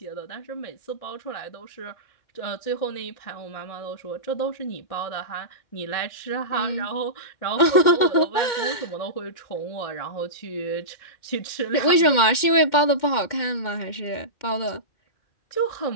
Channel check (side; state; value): right; late; 2.1 ms